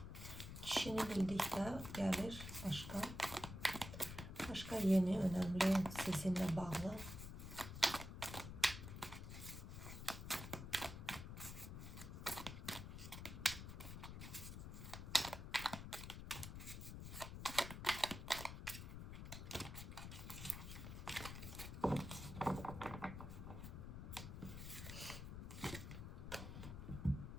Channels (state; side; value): noise; left; rumble, 8 dB below the sound